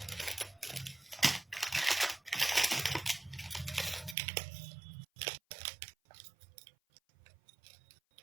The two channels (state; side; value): drops out; left; at 4.2 s